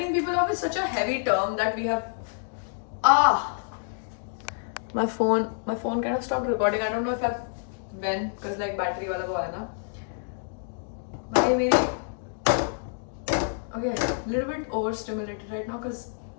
is such a heavy term that we have. My phone kind of stopped recording. I don't know if when, because like battery wala wo hai na. Okay, a little bit overstimulated right now because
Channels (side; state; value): right; silent; digital silence